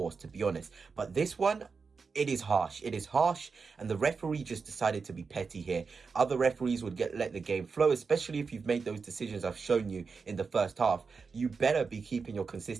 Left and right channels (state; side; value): quieter; left; 5.0 dB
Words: to be honest. But this one, it is harsh. It is harsh, and the referee just decided to be petty here. Other referees would let the game flow, especially if you've made those decisions I've shown you in the first half. You better be keeping your